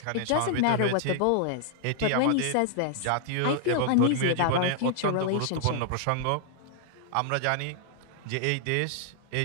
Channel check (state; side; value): different; both; correlation 0.00